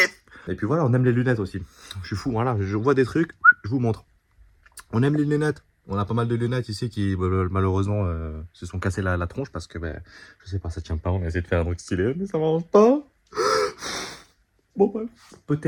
Et puis voilà, on aime les lunettes aussi. Je suis fou, voilà, je vois des trucs, je vous montre. On aime les lunettes. On a pas mal de lunettes ici qui, malheureusement, se sont cassées la tronche parce que, je sais pas, ça tient pas. On a essayé de faire un truc stylé, mais ça marche pas. Bon, bref.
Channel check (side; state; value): both; identical; correlation 1.00